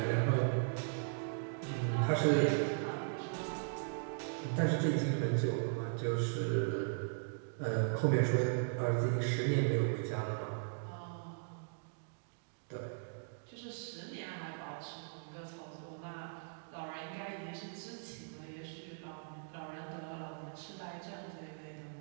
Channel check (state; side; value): silent; left; digital silence